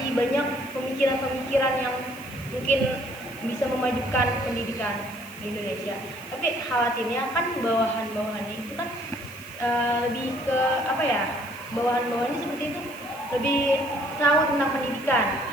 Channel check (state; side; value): noise; right; hiss, 20 dB below the sound